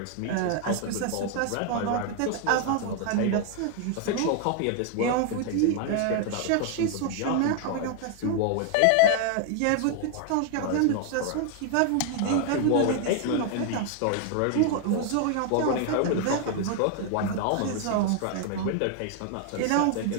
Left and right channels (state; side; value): different; both; correlation 0.00